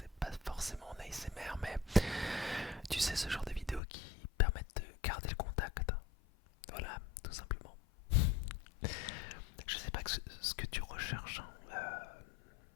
pas forcément en ASMR, mais tu sais, ce genre de vidéos qui permettent de garder le contact. Voilà, tout simplement. Je sais pas ce que tu recherches, hein.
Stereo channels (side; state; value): right; drops out; at 3.8 s